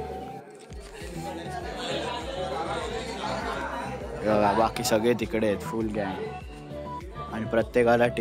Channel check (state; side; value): identical; both; correlation 1.00